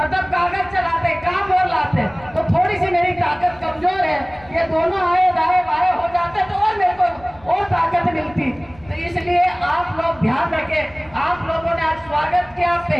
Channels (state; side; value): noise; left; rumble, 25 dB below the sound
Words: कागज चलाते, काम और लाते, तो थोड़ी सी मेरी ताकत कमजोर है। ये दोनों आए दाएं बाएं हो जाते तो और मेरे को और ताकत मिलती। तो इसलिए आप लोग ध्यान रखें। आप लोगों ने आज स्वागत किया,